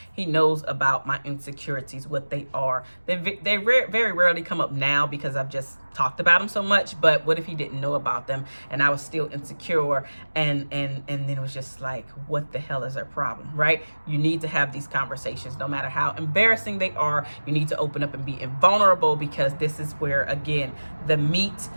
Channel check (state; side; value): inverted; both; correlation -1.00